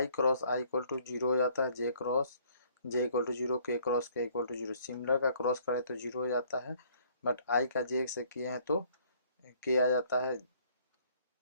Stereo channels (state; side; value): inverted; both; correlation -0.61